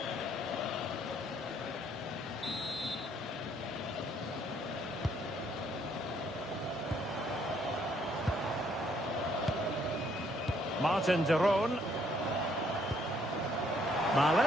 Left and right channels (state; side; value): normal; both; correlation 0.67